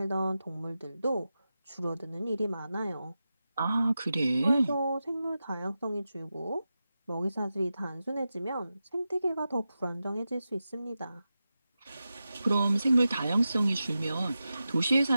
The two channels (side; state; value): both; inverted; correlation -0.92